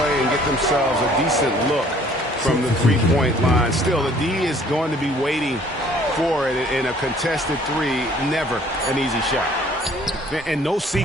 and get themselves a decent look from the three-point line. Still, the D is going to be waiting for it in a contested three. Never an easy shot. And no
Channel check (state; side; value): normal; both; correlation 0.57